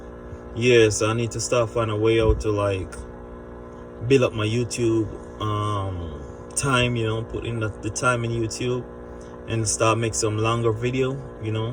yeah, so I need to start finding a way out to, like, build up my YouTube time, you know, put in the time in YouTube and start make some longer video, you know,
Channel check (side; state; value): both; identical; correlation 1.00